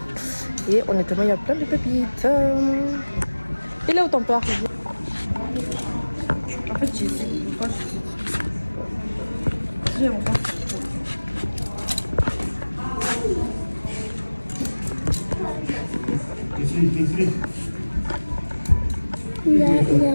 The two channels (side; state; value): both; inverted; correlation -1.00